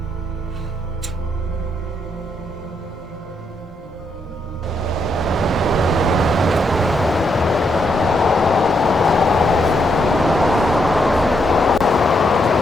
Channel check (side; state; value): both; normal; correlation 0.78